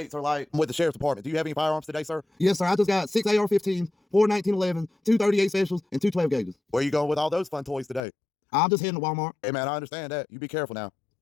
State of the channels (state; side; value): drops out; right; at 8.0 s